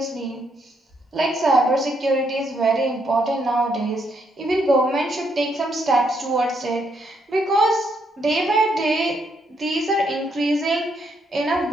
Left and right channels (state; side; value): normal; both; correlation 0.75